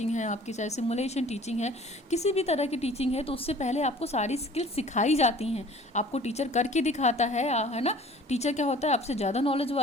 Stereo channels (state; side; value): normal; both; correlation 0.49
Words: है आपकी, चाहे सिमुलेशन टीचिंग है, किसी भी तरह की टीचिंग है, तो उससे पहले आपको सारी स्किल सिखाई जाती हैं, आपको टीचर करके दिखाता है ना। टीचर क्या होता है, आपसे ज़्यादा नॉलेज